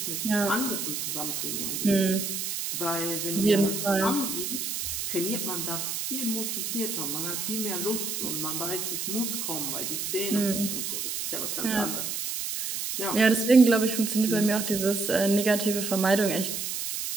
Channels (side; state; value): right; noise; hiss, 3 dB below the sound